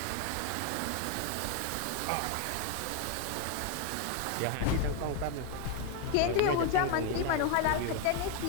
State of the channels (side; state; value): both; different; correlation 0.01